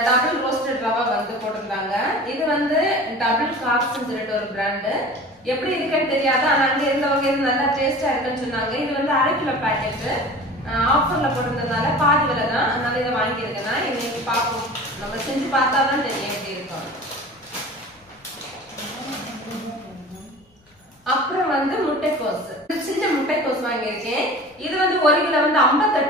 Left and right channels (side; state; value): both; normal; correlation 0.39